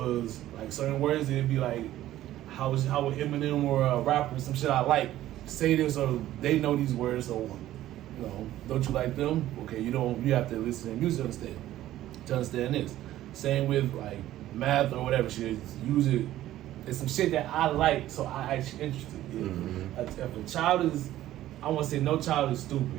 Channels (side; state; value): left; quieter; 13.9 dB